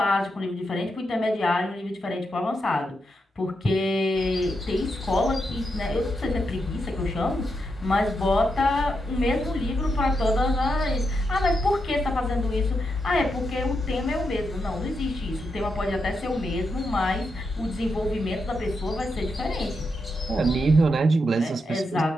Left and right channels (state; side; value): normal; both; correlation 0.84